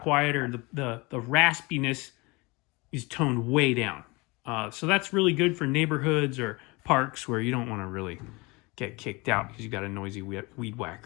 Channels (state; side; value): quieter; right; 25.4 dB